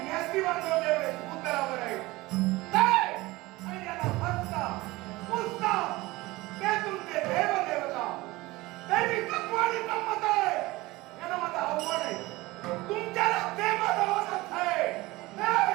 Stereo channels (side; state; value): left; quieter; 20.4 dB